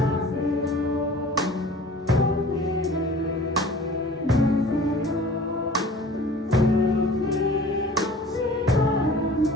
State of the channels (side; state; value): both; normal; correlation 0.45